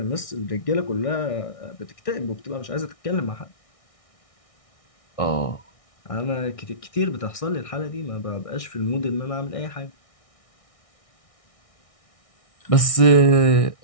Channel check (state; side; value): late; right; 1.6 ms